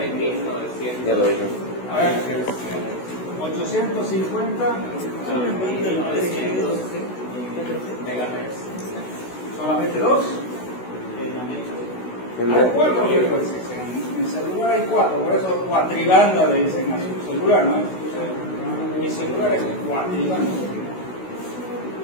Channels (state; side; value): late; right; 16 ms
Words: Ya lo dije. A ver, 850 megahertz. solamente 2. Hay 4 frecuencias. En celular hay 4, por eso cuatribanda le dicen a su celular, ¿no? Mi celular es cuatribanda.